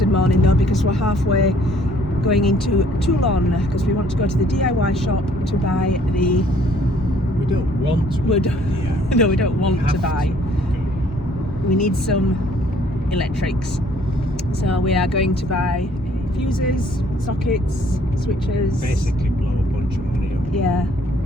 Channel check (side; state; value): both; normal; correlation 0.61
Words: morning though, because we're halfway going into Toulon, because we want to go to the DIY shop to buy the... We don't want to. No, we don't want to buy. To. We need some electrics. So we are going to buy fuses, sockets, switches. Basically blow a bunch of money up. Yeah.